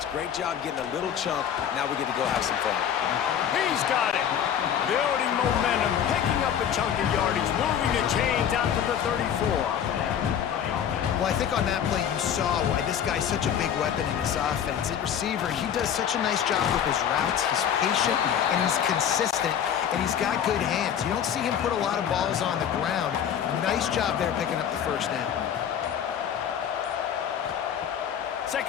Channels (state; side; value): quieter; right; 9.0 dB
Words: Great job getting a little chunk. Now we get to go have some fun. He's got it. Building momentum, picking up a chunk of yardage, moving the chains out to the 34. Well, I think on that play you saw why this guy's such a big weapon in this offense. At receiver, he does such a nice job with his routes. He's patient, and he's consistent, and he's got good hands. You don't see him put a lot of balls on the ground. Nice job there picking up the 1st down.